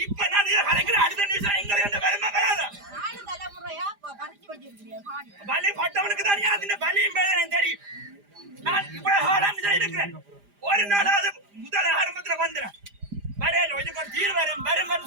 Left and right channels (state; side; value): late; left; 4.9 ms